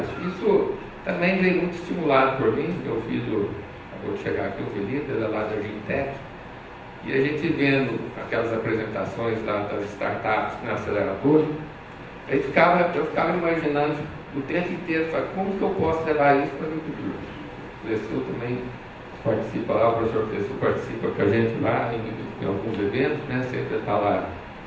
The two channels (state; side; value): identical; both; correlation 1.00